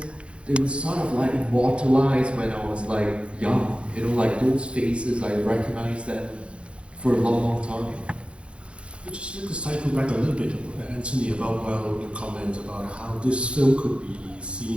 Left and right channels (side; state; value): left; late; 0.059 ms